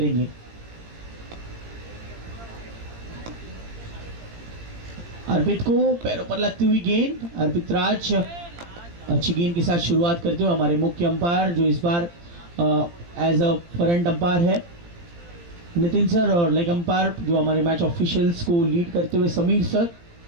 अर्पित को पैरों पर लगती हुई गेंद, अर्पित राज अच्छी गेंद के साथ शुरुआत करते हुए हमारे मुख्य अंपायर जो इस बार एज अ फ्रंट अंपायर है नितिन सर, और लेग अंपायर जो हमारे मैच ऑफिशियल्स को लीड करते हुए समीर सर।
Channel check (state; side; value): late; left; 17 ms